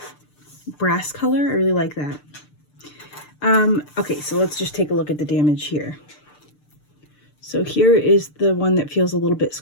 color. I really like that. Okay, so let's just take a look at the damage here. So here is the one that feels a little bit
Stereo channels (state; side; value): late; right; 6.7 ms